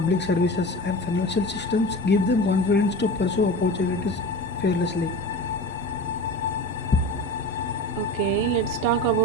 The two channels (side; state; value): both; normal; correlation 0.32